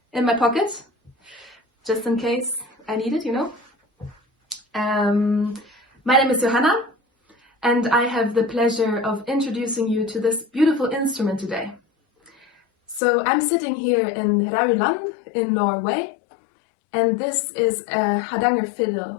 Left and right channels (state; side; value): drops out; right; at 13.0 s